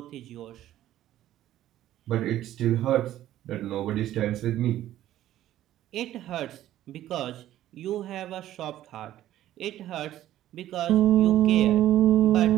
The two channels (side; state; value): left; quieter; 13.2 dB